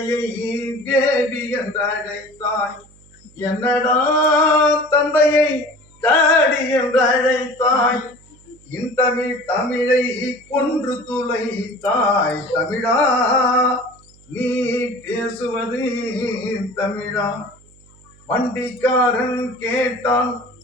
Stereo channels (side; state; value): right; noise; hum, 27 dB below the sound